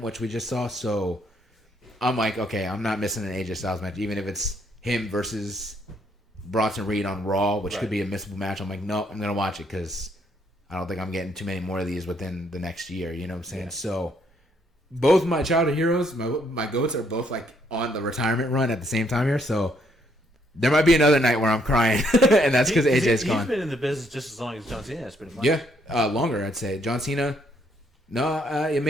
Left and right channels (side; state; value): both; normal; correlation 0.71